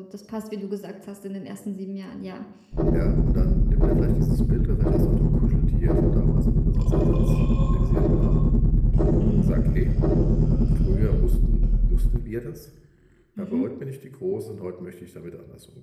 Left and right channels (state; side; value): identical; both; correlation 1.00